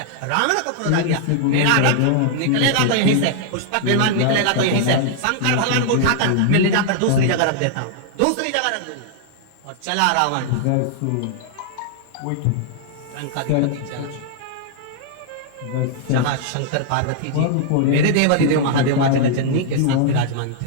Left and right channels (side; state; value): both; different; correlation -0.01